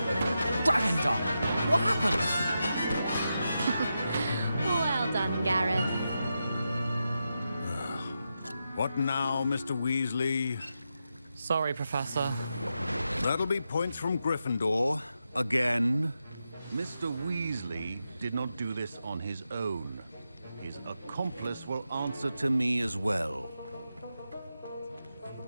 Dragon Dog! What happened? Well done, Gareth. What now, Mr. Weasley? Sorry, Professor. That'll be points from Gryffindor. Again. Mr. Weasley did not do this on his own. His accomplice will answer to me as well.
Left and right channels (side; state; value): both; inverted; correlation -0.88